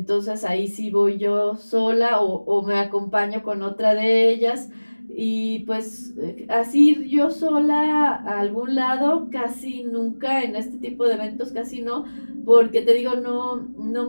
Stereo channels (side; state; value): both; inverted; correlation -1.00